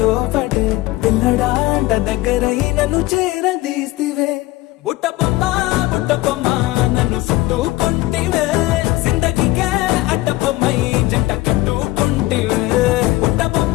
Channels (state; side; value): quieter; right; 18.7 dB